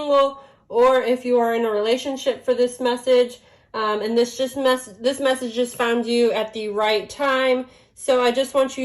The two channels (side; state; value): both; identical; correlation 1.00